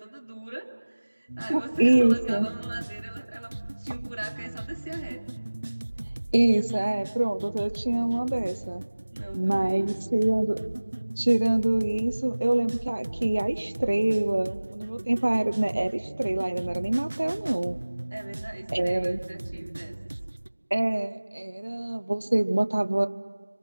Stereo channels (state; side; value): inverted; both; correlation -1.00